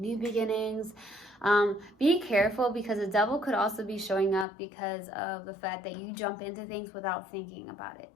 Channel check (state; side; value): drops out; right; at 4.5 s